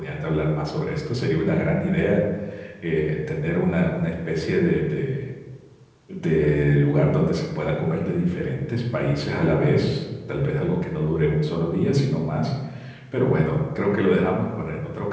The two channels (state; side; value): identical; both; correlation 1.00